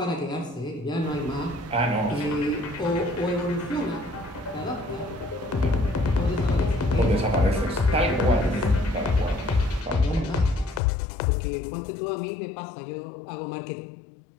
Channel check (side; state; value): right; drops out; at 10.8 s